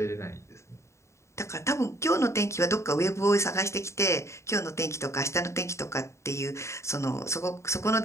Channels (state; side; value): late; right; 0.14 ms